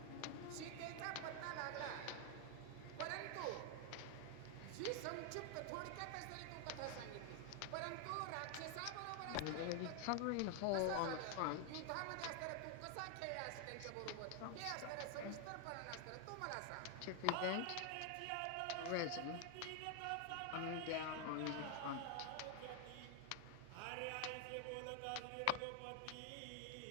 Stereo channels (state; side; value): different; both; correlation 0.01